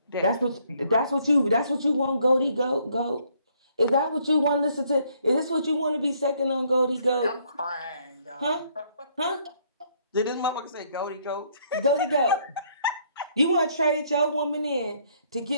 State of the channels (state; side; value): inverted; both; correlation -0.67